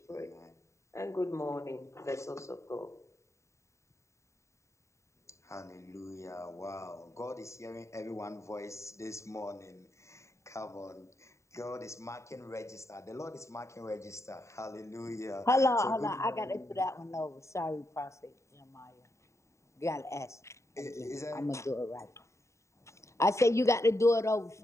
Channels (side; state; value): right; late; 0.14 ms